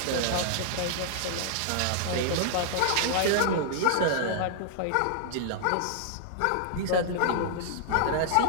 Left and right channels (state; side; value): different; both; correlation -0.01